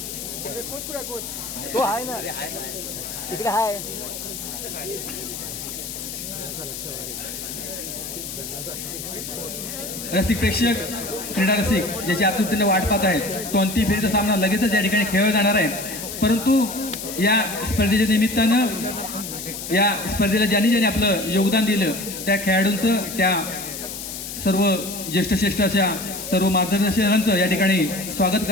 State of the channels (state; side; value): noise; left; hiss, 8 dB below the sound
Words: तो आहे ना तिकडे आहे. रसिक प्रेक्षक, क्रीडा रसिक ज्याची आतुरतेने वाट पाहत आहेत, तो अंतिम फेरीचा सामना लगेचच या ठिकाणी खेळला जाणार आहे. परंतु या स्पर्धेच्या निमित्तानं या स्पर्धेला ज्यांनी आपलं योगदान दिलं त्या खेळाडूंचं, त्या सर्व ज्येष्ठ अशा सर्व मार्गदर्शकांचं या ठिकाणी स्वागत